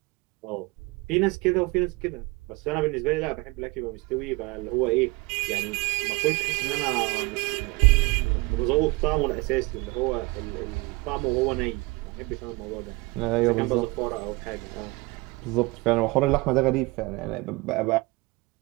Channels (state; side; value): quieter; left; 24.6 dB